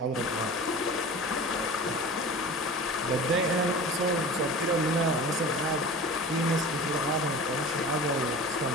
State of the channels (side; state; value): both; normal; correlation 0.36